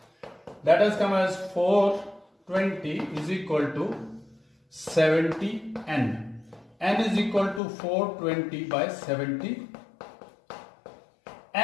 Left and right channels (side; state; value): right; drops out; at 7.6 s